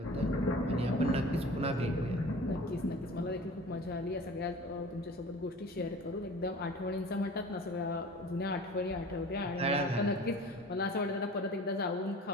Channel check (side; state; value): both; normal; correlation 0.41